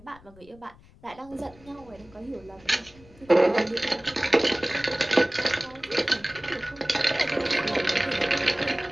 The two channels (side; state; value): left; noise; rumble, 24 dB below the sound